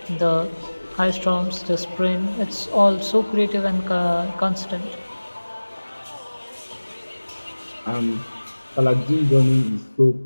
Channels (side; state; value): both; inverted; correlation -1.00